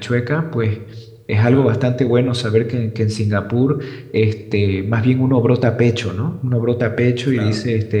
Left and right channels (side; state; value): both; identical; correlation 1.00